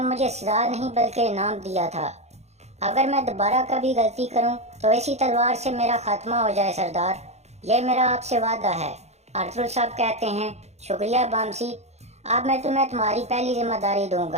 मुझे सजा नहीं बल्कि इनाम दिया था। अगर मैं दोबारा कभी गलती करूं तो इसी तलवार से मेरा खात्मा हो जाए सरदार, ये मेरा आपसे वादा है। अरतुल साहब कहते हैं, शुक्रिया बामसी, अब मैं तुम्हें तुम्हारी पहली जिम्मेदारी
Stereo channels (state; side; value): late; left; 0.32 ms